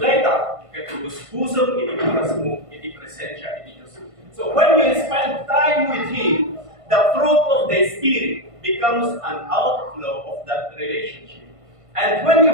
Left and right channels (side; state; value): left; late; 1.5 ms